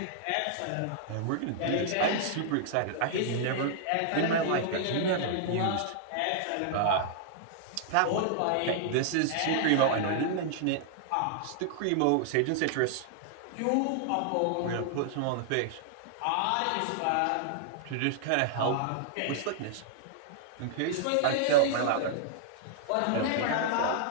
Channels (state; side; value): different; both; correlation -0.01